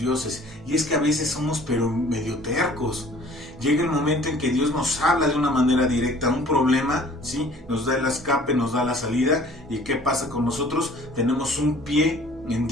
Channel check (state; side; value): normal; both; correlation 0.51